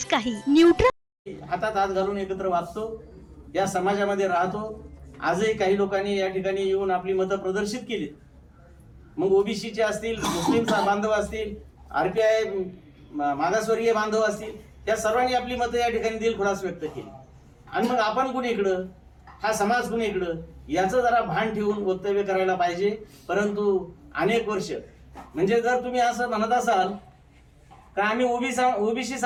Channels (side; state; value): both; identical; correlation 1.00